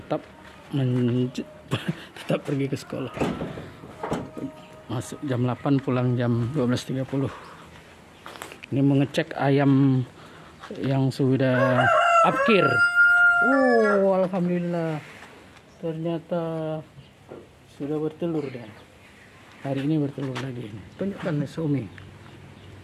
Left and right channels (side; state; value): both; identical; correlation 1.00